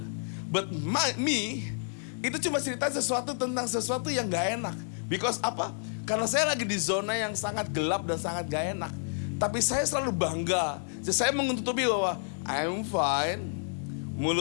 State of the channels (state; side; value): silent; right; digital silence